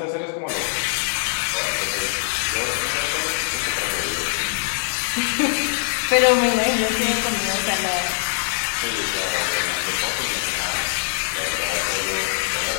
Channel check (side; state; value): right; silent; digital silence